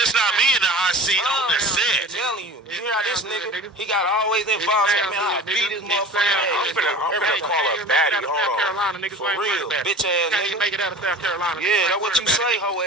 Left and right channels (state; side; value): normal; both; correlation 0.38